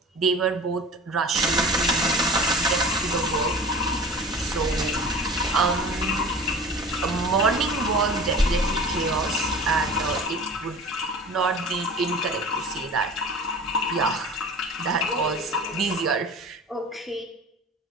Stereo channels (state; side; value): normal; both; correlation 0.38